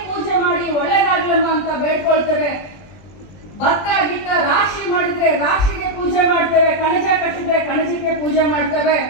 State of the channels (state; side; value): late; right; 20 ms